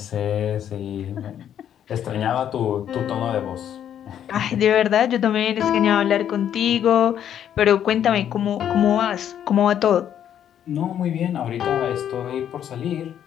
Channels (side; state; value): right; quieter; 9.8 dB